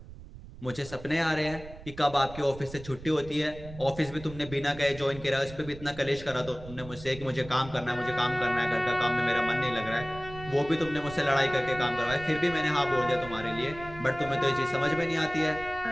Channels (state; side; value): noise; right; rumble, 15 dB below the sound